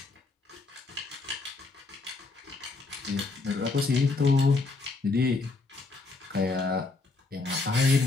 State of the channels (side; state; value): right; quieter; 3.6 dB